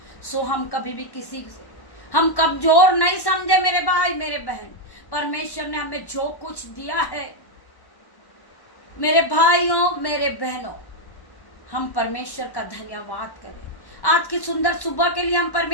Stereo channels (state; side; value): late; right; 1.1 ms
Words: सो हम कभी भी किसी से हम कमजोर नहीं समझे मेरे भाई मेरे बहन। परमेश्वर ने हमें जो कुछ दिया है मेरे भाइयों मेरे बहनों, हम परमेश्वर का धन्यवाद करें। आज की सुंदर सुबह के लिए हम